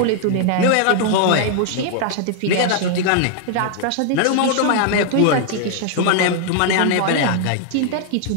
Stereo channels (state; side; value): different; both; correlation 0.00